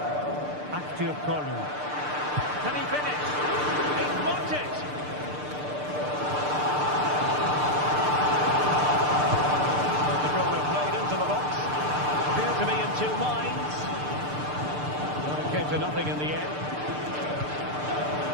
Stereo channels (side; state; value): left; late; 6.7 ms